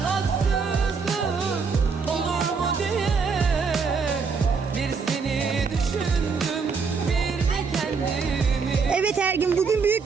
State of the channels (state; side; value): quieter; left; 5.2 dB